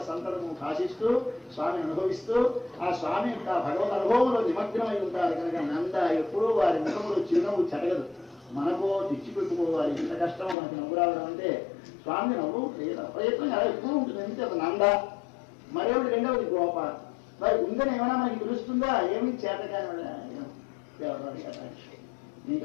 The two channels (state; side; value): drops out; right; at 10.6 s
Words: సంతతము కాశిస్తూ స్వామిని అనుభవిస్తూ ఆ స్వామి యొక్క భగవద్ అనుభవంలో నిమగ్నమై ఉంటారు కనుక నంద ఎప్పుడూ వారి ముఖములు చిరునవ్వు చెడగదు. మనకు తెచ్చిపెట్టుకోవాలి. ఎంత కష్టమో మనకి నవ్వు రావడం అంటే స్వామి నవ్వు ప్రయత్నం అలా ఎక్కువ ఉంటుంది. అంతే ఒక నంద. మరేమిటి రెండవది గోప. మరి ఉందని ఏమైనా మనకి తెలుస్తుందా? ఏమి చేతకాని నీకు